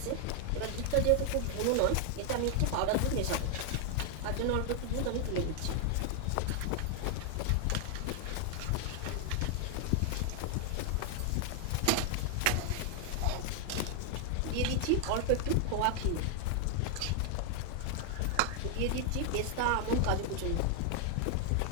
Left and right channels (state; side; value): different; both; correlation 0.00